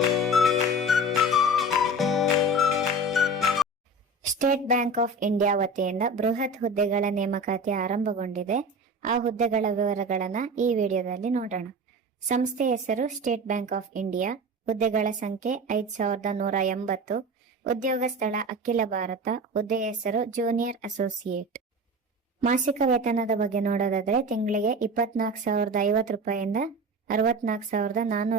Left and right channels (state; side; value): normal; both; correlation 0.33